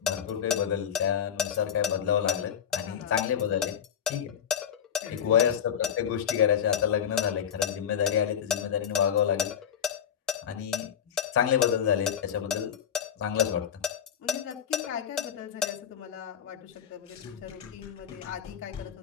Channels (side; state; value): right; quieter; 8.4 dB